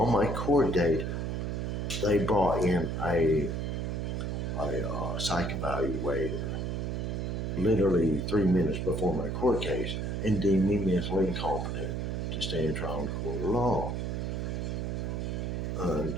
my court date, they brought in a psych evaluator literally 3 minutes before my court case and deemed me mentally incompetent to stand trial in court of law. And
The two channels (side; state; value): right; noise; hum, 2 dB below the sound